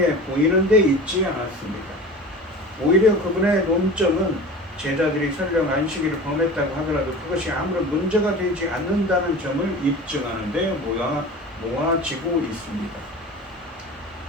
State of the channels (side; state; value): both; normal; correlation 0.35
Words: 보이는 데 있지 않았습니다. 오히려 그분의 논점은 제자들이 설령 안식일을 범했다고 하더라도 그것이 아무런 문제가 되지 않는다는 점을 입증하는 데 모아지고 있습니다.